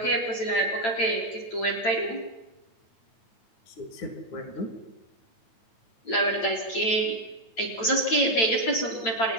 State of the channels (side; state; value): right; late; 8.9 ms